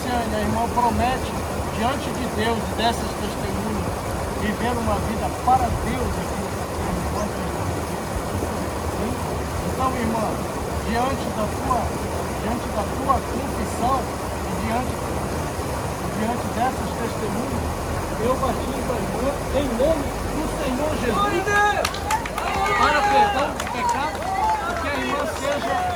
a irmã promete diante de Deus e dessas testemunhas viver uma vida para Deus aqui enquanto estamos aqui. Sim? Então, irmã, diante da tua confissão e diante dessas testemunhas, eu batizo a irmã em nome do Senhor Jesus para perdão dos pecados, e que a irmã seja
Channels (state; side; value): identical; both; correlation 1.00